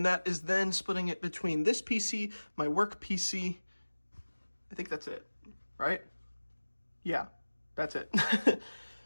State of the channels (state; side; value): inverted; both; correlation -1.00